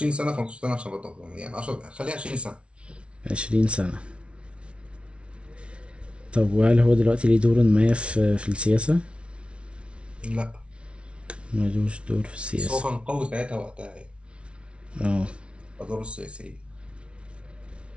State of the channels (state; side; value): late; left; 0.059 ms